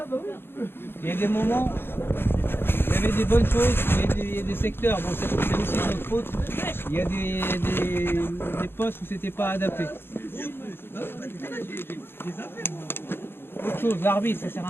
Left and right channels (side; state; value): right; late; 0.11 ms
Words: Il y a des moments, il y avait des bonnes choses, il y a des secteurs, bon c'est aussi notre faute, il y a des postes où c'était pas adapté. Autre chose, l'arbitre, ça sert